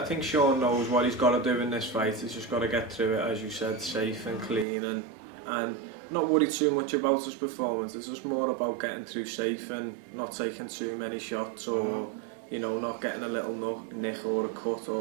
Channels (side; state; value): left; drops out; at 4.7 s